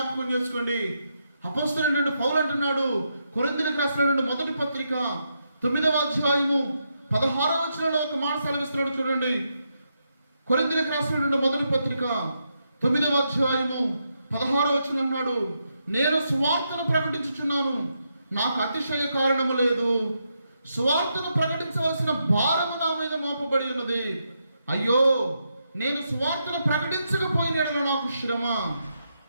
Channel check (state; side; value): inverted; both; correlation -0.82